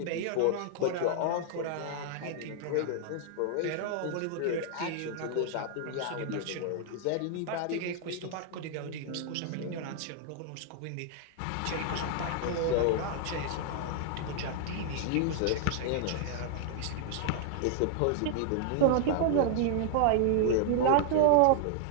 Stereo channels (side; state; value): both; different; correlation 0.00